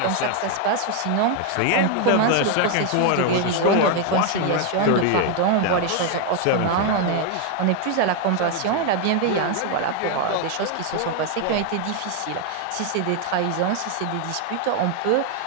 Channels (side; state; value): both; different; correlation 0.01